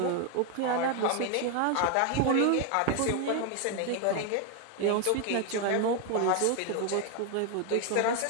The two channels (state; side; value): different; both; correlation 0.00